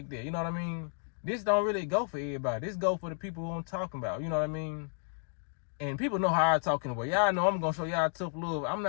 that, you know what I mean? This don't really go for everybody. This go for the people who I'm talking about, you know what I mean? And people know how I talk in a way. Y'all know I'm gonna show y'all tough love. I'm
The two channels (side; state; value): right; silent; 56 dB below the other